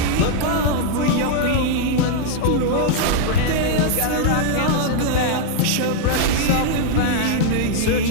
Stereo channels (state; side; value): different; both; correlation -0.01